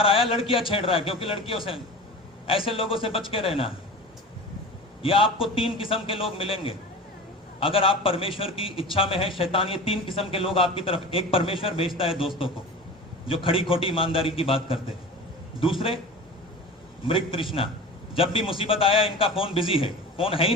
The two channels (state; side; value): normal; both; correlation 0.35